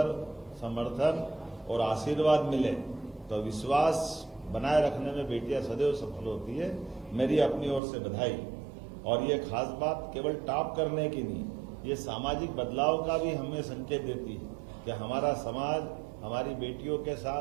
समर्थन और आशीर्वाद मिले तो विश्वास बनाए रखने में बेटियां सदैव सफल होती है। मेरी अपनी ओर से बधाई। और ये खास बात केवल टॉप करने की नहीं, ये सामाजिक बदलाव का भी हमें संकेत देती है कि हमारा समाज हमारी बेटियों के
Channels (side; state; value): left; drops out; at 7.8 s